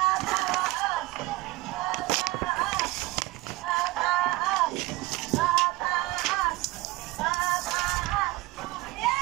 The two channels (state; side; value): quieter; left; 20.3 dB